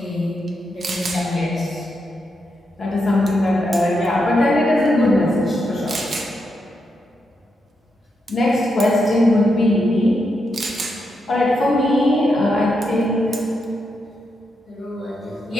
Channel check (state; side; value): normal; both; correlation 0.83